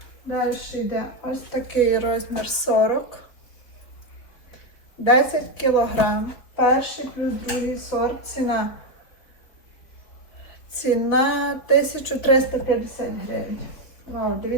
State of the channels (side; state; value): right; late; 4.1 ms